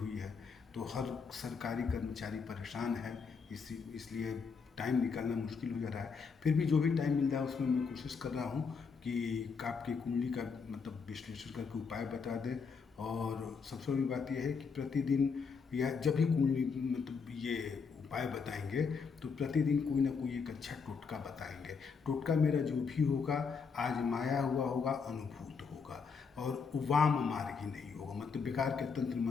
है, तो हर सरकारी कर्मचारी परेशान है। इसलिए टाइम निकालना मुश्किल हो जा रहा है। फिर भी जो भी टाइम मिल रहा है उसमें मैं कोशिश कर रहा हूँ कि आपकी कुंडली का विश्लेषण करके उपाय बता दें। और सबसे बड़ी बात यह है कि प्रतिदिन या जब भी कुंडली ये उपाय बताएंगे तो प्रतिदिन कोई ना कोई एक अच्छा टोटका बताएंगे। टोटका मेरा जो भी होगा आजमाया हुआ होगा, अनुभूत होगा और वाम मार्गी नहीं होगा। बेकार के तंत्र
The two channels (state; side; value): quieter; right; 5.5 dB